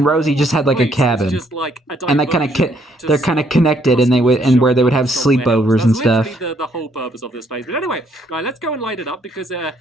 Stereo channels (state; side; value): normal; both; correlation 0.69